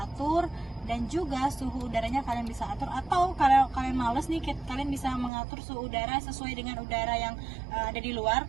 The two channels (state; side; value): drops out; left; at 5.3 s